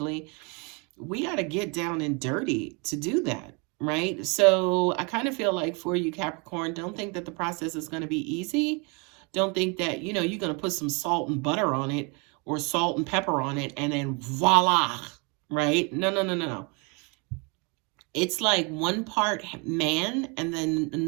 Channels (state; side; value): quieter; left; 31.3 dB